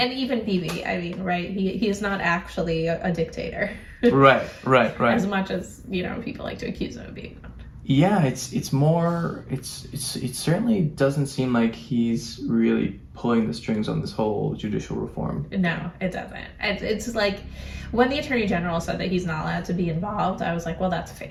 even Bibi, I mean, right? He is not actually a dictator. Right. As much as, people like to accuse him of being. Yeah, it's more, it certainly doesn't seem like he's really pulling the strings on this whole judicial reform. No, it doesn't. It's like, when the Attorney General said that he's not allowed to be involved, I was like, well, that's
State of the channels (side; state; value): both; identical; correlation 1.00